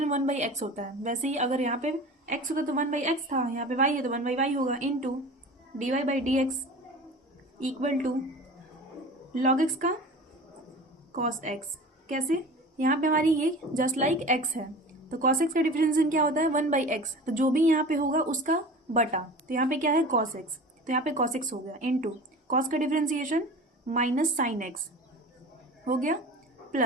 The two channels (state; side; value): normal; both; correlation 0.37